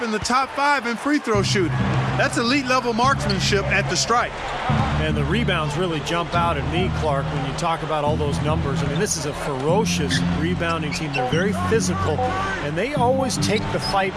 in the top 5 in free throw shooting. That's elite level marksmanship at the stripe. And the rebounds really jump out at me, Clark, when you talk about all those numbers. I mean, this is a ferocious rebounding team. They're very physical, and they always take the fight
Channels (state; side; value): identical; both; correlation 1.00